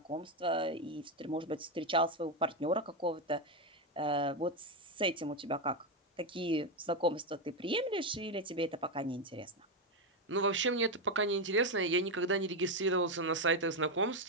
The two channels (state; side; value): normal; both; correlation 0.08